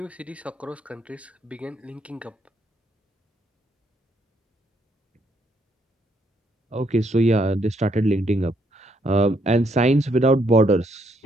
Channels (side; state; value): both; normal; correlation 0.72